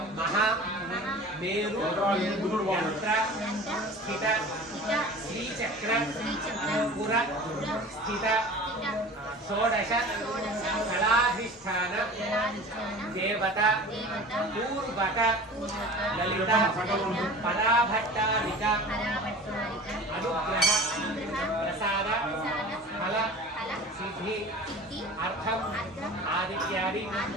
మహా మేరు యంత్ర స్థిత శ్రీచక్ర పుర స్థిత షోడశ కళాధిష్టాన దేవత పూర్వక లలిత పరాభట్టారిక అనుగ్రహ ప్రసాద ఫల సిద్ధి అర్థం ఆదిత్యాది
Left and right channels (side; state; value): both; normal; correlation 0.39